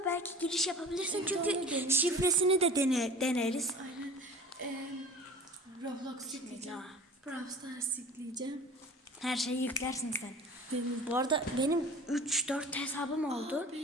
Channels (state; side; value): normal; both; correlation 0.41